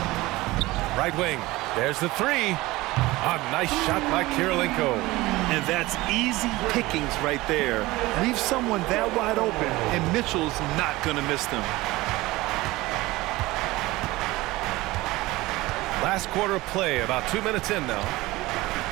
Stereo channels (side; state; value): left; quieter; 19.7 dB